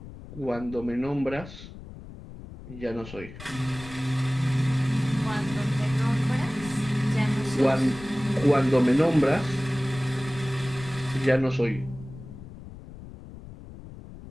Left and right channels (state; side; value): noise; left; rumble, 15 dB below the sound